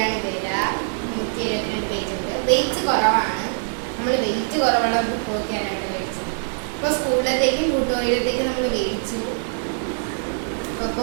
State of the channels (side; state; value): left; silent; digital silence